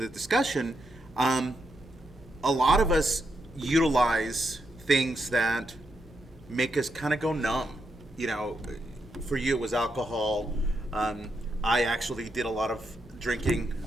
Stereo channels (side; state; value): both; normal; correlation 0.82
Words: discussion, a lot of us utilize things that make us kind of go numb. You know, for you it was alcohol. I actually did a lot of drinking